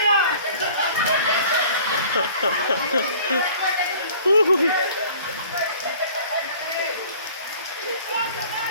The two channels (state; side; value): inverted; both; correlation -0.48